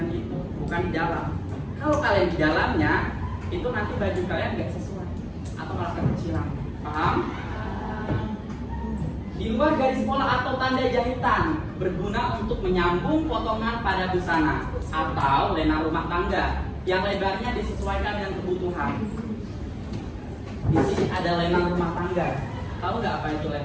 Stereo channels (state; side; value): identical; both; correlation 1.00